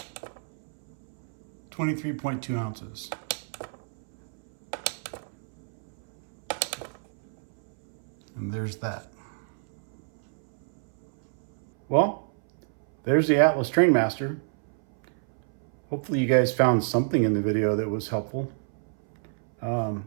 23.2 ounces. And there's that. Well, there's the Atlas Trainmaster. Hopefully you guys found something in the video that was helpful. You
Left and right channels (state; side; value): silent; left; 59 dB below the other